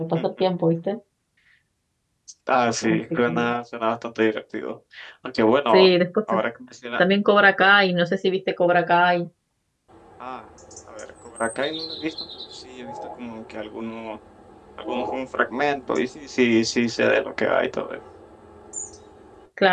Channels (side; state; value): both; identical; correlation 1.00